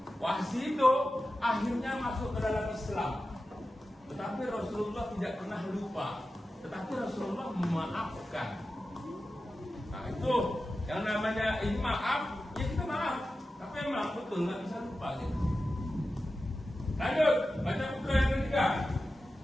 Wahsy itu akhirnya masuk ke dalam Islam. Tetapi Rasulullah tidak pernah lupa. Tetapi Rasulullah memaafkan. Nah itu yang namanya ini maaf, ya kita maaf. Tapi maaf betul, nggak bisa lupa gitu. Lanjut, baca buku yang ketiga.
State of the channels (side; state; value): both; normal; correlation 0.93